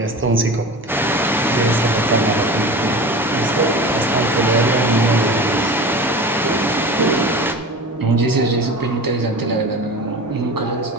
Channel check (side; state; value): both; normal; correlation 0.33